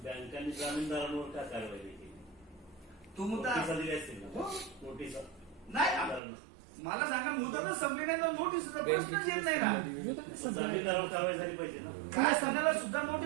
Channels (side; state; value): left; drops out; at 6.2 s